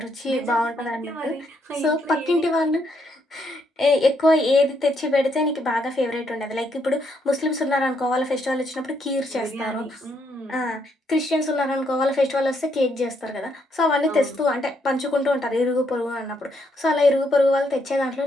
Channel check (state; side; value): normal; both; correlation 0.75